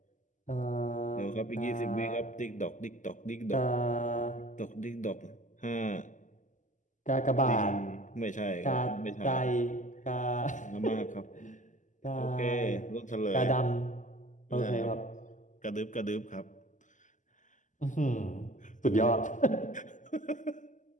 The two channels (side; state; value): right; late; 0.37 ms